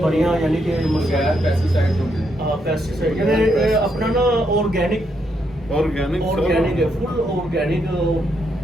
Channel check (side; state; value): both; normal; correlation 0.78